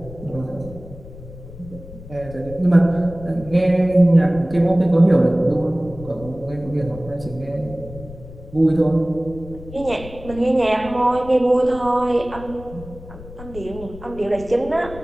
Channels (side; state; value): left; noise; rumble, 15 dB below the sound